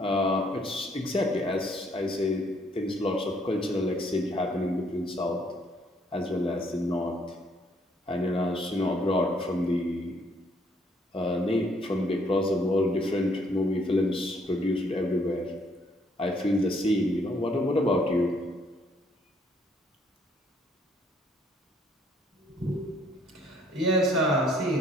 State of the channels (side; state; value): both; normal; correlation 0.66